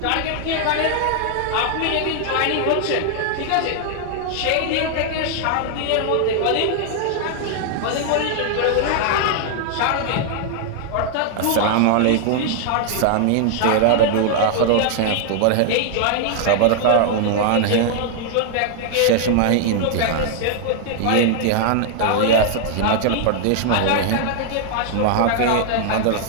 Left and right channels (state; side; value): different; both; correlation 0.00